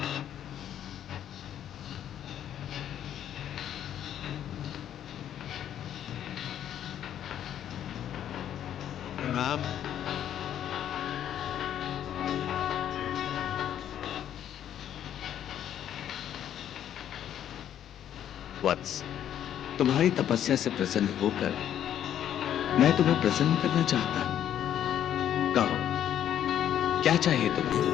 प्रणाम। वत्स, तुम्हारी तपस्या से प्रसन्न होकर मैं तुम्हें प्रसन्न करना चाहता हूं। कहो, क्या चाहिए तुम्हें?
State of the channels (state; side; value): quieter; right; 10.4 dB